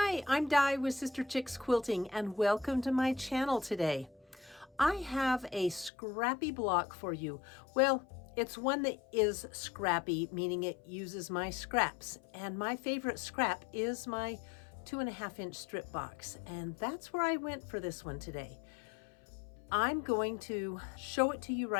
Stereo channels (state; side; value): drops out; right; at 5.9 s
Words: Hi, I'm Di with Sister Chicks Quilting and welcome to my channel today. I have a scrappy block for you. Well, it's one that is scrappy, meaning it uses my scraps. And my favorite scrap is my 2.5-inch strip box. And that's where I went for this one today. I'm going to show it to you